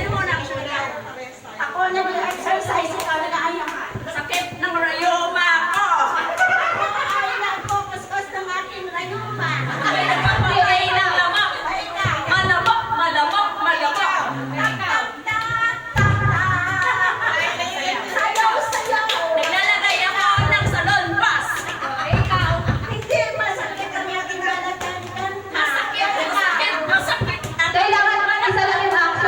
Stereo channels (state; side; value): identical; both; correlation 1.00